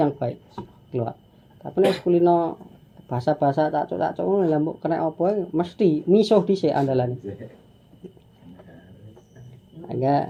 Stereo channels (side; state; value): both; identical; correlation 1.00